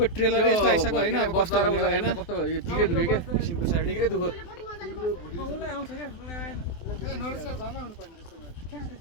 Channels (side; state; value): right; late; 24 ms